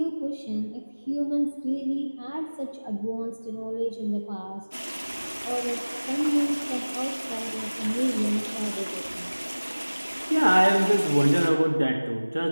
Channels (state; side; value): inverted; both; correlation -1.00